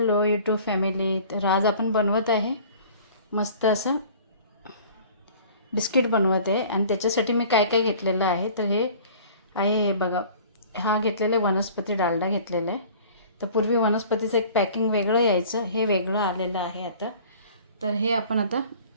यूट्यूब फॅमिली, तर आज आपण बनवत आहे मस्त असं बिस्किट बनवत आहे. आणि त्याच्यासाठी मी काय काय घेतलेलं आहे तर हे आहे, हे बघा, हा घेतलेला वनस्पती डालडा घेतलेला आहे. तर पूर्वी वनस्पतीचं एक पॅकिंग वेगळं यायचं, हे वेगळं आलेलं आहे आता. तर हे आपण आता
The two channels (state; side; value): inverted; both; correlation -0.47